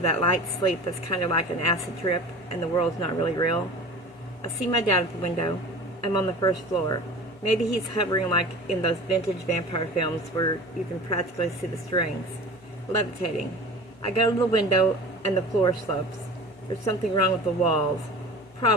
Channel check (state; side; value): noise; left; hum, 29 dB below the sound